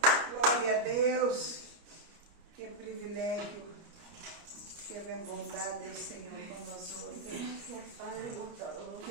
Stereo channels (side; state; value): left; late; 29 ms